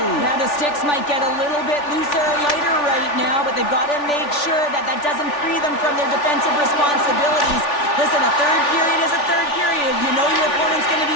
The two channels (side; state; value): right; late; 3.4 ms